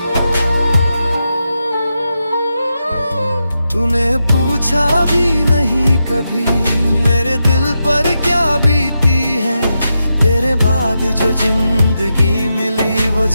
तूने पूछा भी नहीं कभी मेरे दिल पर क्या बीती है। तेरे बाद जो जिंदगी मिली, वो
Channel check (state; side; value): inverted; both; correlation -0.87